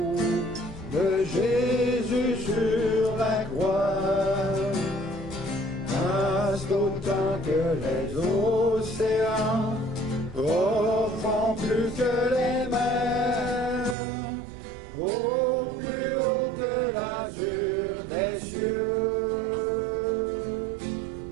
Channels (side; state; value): left; drops out; at 14.0 s